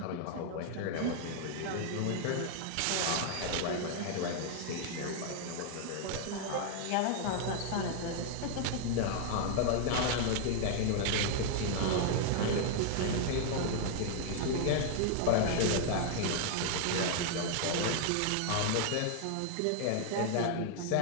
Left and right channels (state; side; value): different; both; correlation 0.00